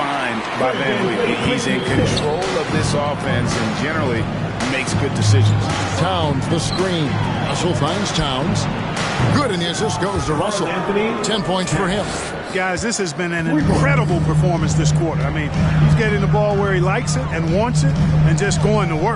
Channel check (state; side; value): identical; both; correlation 1.00